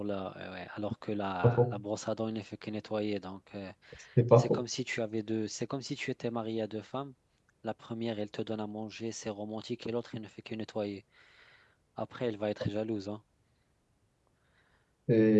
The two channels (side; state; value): both; identical; correlation 1.00